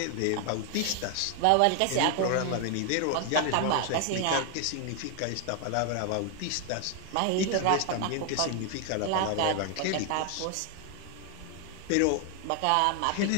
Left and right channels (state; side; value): different; both; correlation 0.01